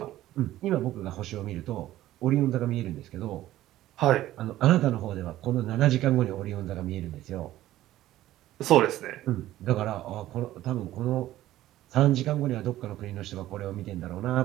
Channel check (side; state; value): left; quieter; 14.5 dB